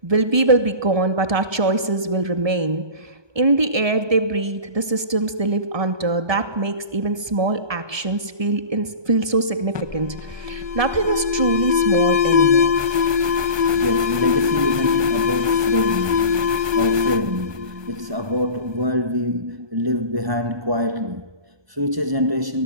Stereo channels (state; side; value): late; left; 1.2 ms